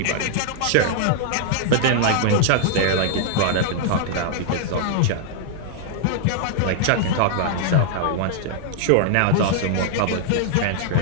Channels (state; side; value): different; both; correlation -0.01